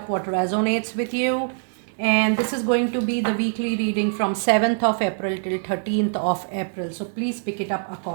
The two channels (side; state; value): left; silent; 63 dB below the other